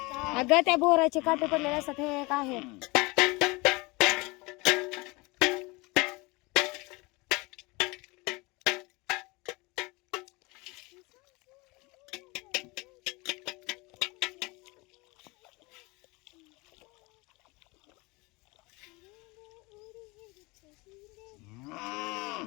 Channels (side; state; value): right; quieter; 25.0 dB